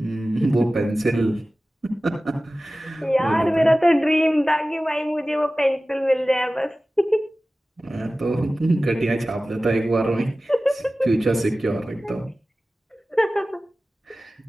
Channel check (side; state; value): both; normal; correlation 0.96